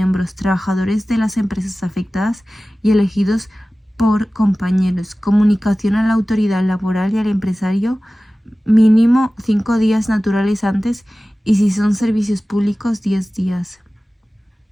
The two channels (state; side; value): normal; both; correlation 0.96